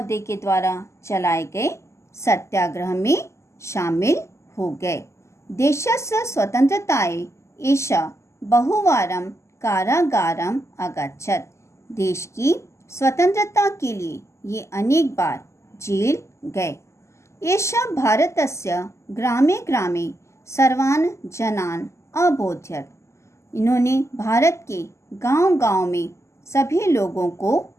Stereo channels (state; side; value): late; right; 0.13 ms